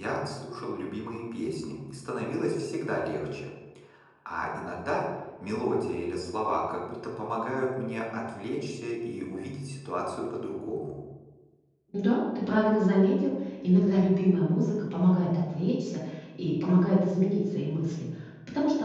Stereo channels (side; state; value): both; identical; correlation 1.00